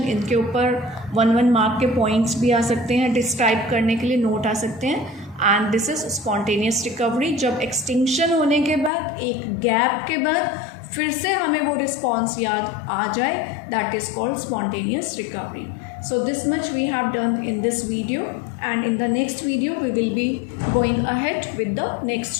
इनके ऊपर 1 mark के points भी आ सकते हैं, describe करने के लिए note आ सकते हैं। And this is spontaneous recovery, जब एक्सटिंक्शन होने के बाद एक गैप के बाद फिर से हमें वो रिस्पॉन्स याद आ जाए, that is called spontaneous recovery. So this much we have done in this video, and in the next video we will be going ahead with the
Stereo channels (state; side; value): drops out; right; at 8.9 s